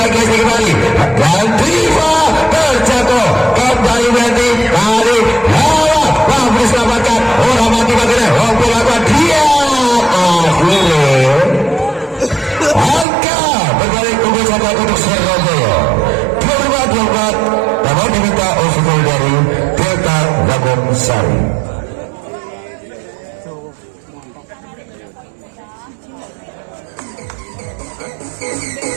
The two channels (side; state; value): left; drops out; at 13.1 s